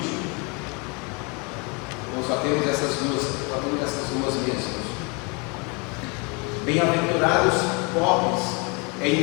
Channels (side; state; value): right; quieter; 31.3 dB